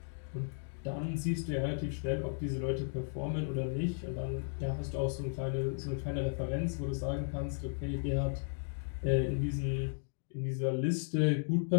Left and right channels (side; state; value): right; silent; digital silence